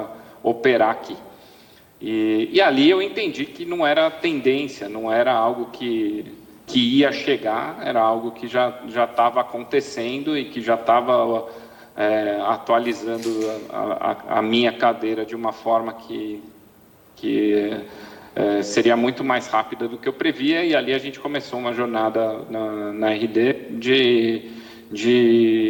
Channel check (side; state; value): both; identical; correlation 1.00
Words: operar aqui. E ali eu entendi que não era tendência, não era algo que ia chegar, era algo que já estava acontecendo e que já estava atualizando a minha cadeira de uma forma que seria muito mais rápida do que eu previa. E ali a gente começou uma jornada na RD